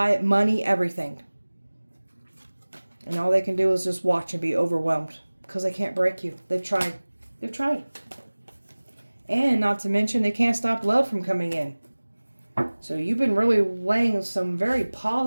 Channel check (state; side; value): inverted; both; correlation -1.00